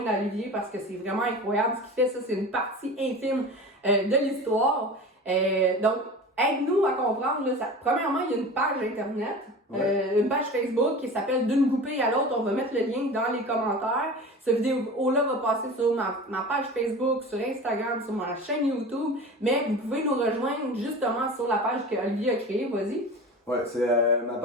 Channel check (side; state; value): both; normal; correlation 0.34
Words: à Olivier parce que c'est vraiment incroyable ce qu'il fait. Ça, c'est une partie intime de l'histoire. Donc, aide-nous à comprendre. Là, premièrement, il y a une page Internet, une page Facebook qui s'appelle D'une goupille à l'autre. On va mettre le lien dans les commentaires. Cette vidéo-là va passer sur ma page Facebook, sur Instagram, sur ma chaîne YouTube. Mais vous pouvez nous rejoindre justement sur la page que Olivier a créée. Vas-y. Ouais, c'est ma